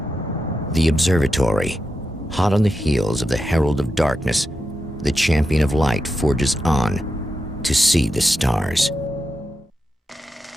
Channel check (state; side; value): normal; both; correlation 0.88